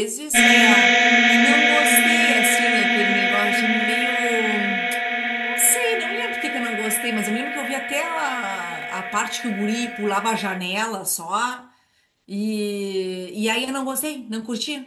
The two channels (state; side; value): identical; both; correlation 1.00